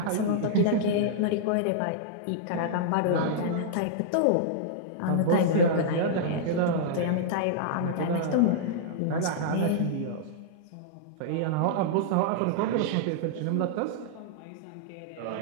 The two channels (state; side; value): different; both; correlation -0.02